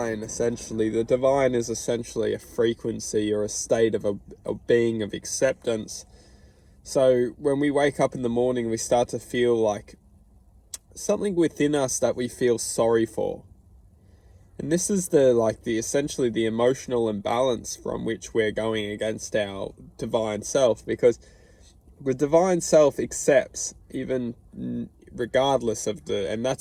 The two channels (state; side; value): identical; both; correlation 1.00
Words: Essentially, the divine is essentially a frequency or a state of a being of acceptance. So when we wake up in the morning, we start to feel like something within us that we feel sorry for. And this is essentially the emotional imbalance from which we're going against our divine self, because the divine self accepts even regardless of and